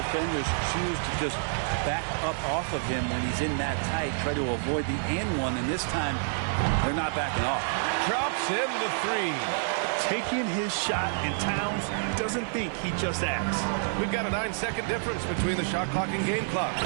choose to just back up off of him when he's in that tight, try to avoid the and one, and this time they're not backing off. Drops in the 3. Taking his shot, and Towns doesn't think, he just acts. We've got a 9-second difference between the shot clock and game clock.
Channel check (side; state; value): left; silent; digital silence